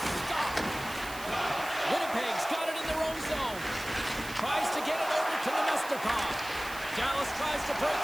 Winnipeg's got it in their own zone. Tries to get it over to Nemestikov. Dallas tries to break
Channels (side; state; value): right; noise; hiss, 14 dB below the sound